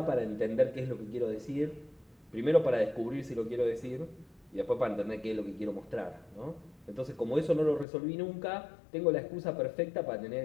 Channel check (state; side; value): drops out; right; at 7.9 s